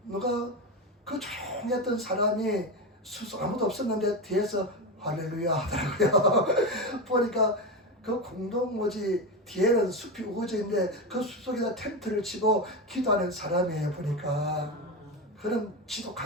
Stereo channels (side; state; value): both; normal; correlation 0.17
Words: 누가 그 조용했던 사람이 아무도 없었는데 뒤에서 할렐루야 하더라고요. 보니까 그 공동모지 뒤에는 숲이 우거져 있는데 그 숲 속에다 텐트를 치고 기도하는 사람이에요. 보니까 그런